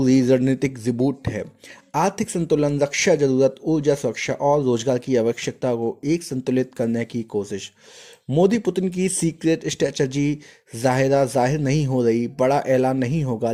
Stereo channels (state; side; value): identical; both; correlation 1.00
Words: रणनीतिक रिबूट है। आर्थिक संतुलन, रक्षा जरूरत, ऊर्जा सुरक्षा और रोजगार की आवश्यकता को एक संतुलित करने की कोशिश। मोदी पुतिन की सीक्रेट स्ट्रेटजी जाहिर नहीं हो रही, बड़ा ऐलान नहीं होगा,